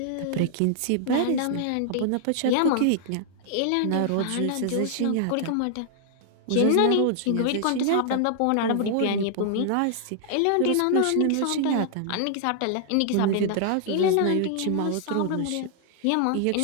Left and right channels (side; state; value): both; different; correlation -0.01